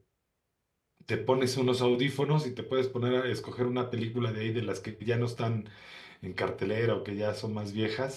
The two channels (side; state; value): both; identical; correlation 1.00